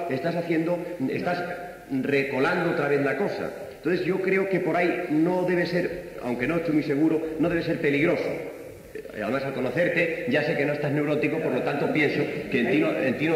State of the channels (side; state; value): both; identical; correlation 1.00